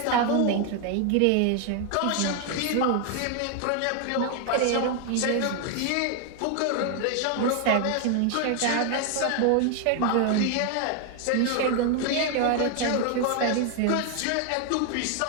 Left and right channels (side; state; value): both; different; correlation 0.00